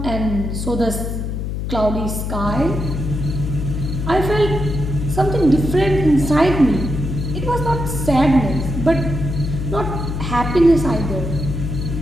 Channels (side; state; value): left; noise; hum, 3 dB below the sound